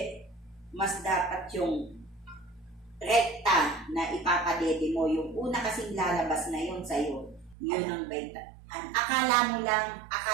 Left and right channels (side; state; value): left; drops out; at 7.6 s